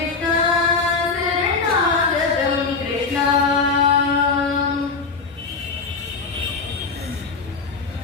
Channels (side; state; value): right; quieter; 4.5 dB